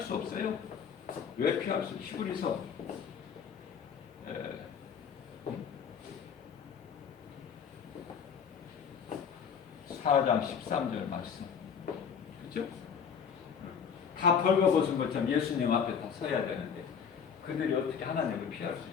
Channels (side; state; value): right; quieter; 7.0 dB